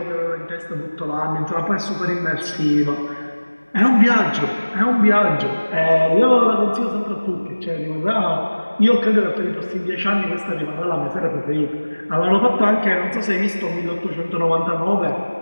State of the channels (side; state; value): both; inverted; correlation -1.00